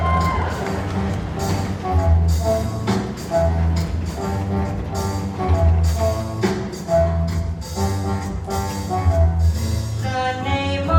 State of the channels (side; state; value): both; identical; correlation 1.00